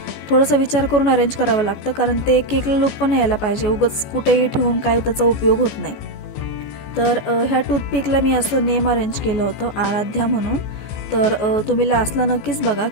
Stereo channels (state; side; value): late; right; 14 ms